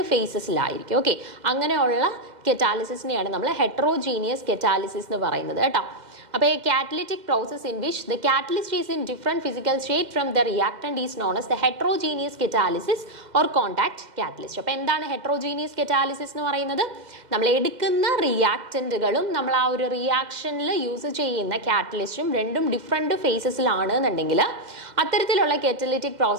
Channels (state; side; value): late; left; 2.0 ms